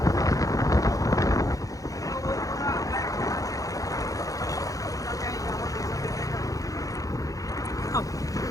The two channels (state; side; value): late; right; 0.17 ms